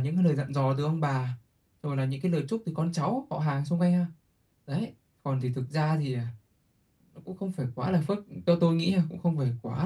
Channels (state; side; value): identical; both; correlation 1.00